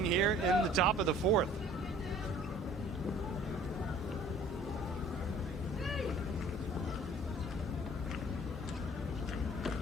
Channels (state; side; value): normal; both; correlation 0.52